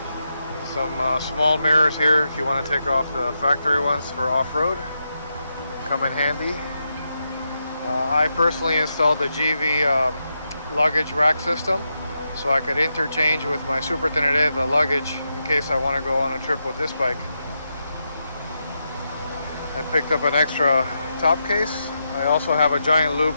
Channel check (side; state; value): both; inverted; correlation -0.85